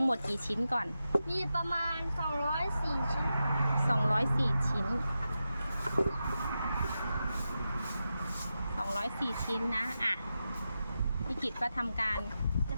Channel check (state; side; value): inverted; both; correlation -0.90